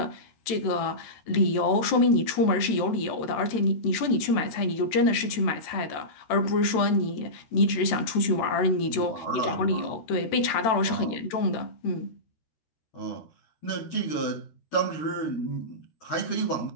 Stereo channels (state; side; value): late; right; 13 ms